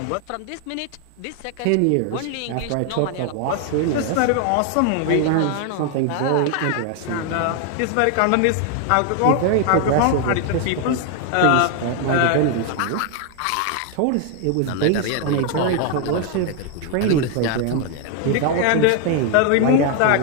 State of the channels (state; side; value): different; both; correlation 0.00